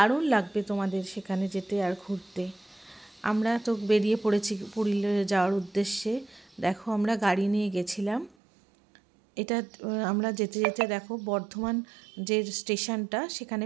লাগবে তোমাদের সেখানে যেতে আর ঘুরতে। আমরা তো বেরিয়ে পড়েছি পুরুলিয়া যাওয়ার উদ্দেশ্যে। দেখো আমরা গাড়ি নিয়ে গেছিলাম। এটা আমরা যেতে যেতে দেখো বর্ধমান যে স্টেশনটা সেখানে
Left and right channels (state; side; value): drops out; left; at 8.3 s